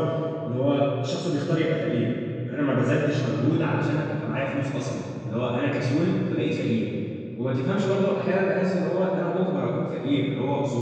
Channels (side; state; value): both; identical; correlation 1.00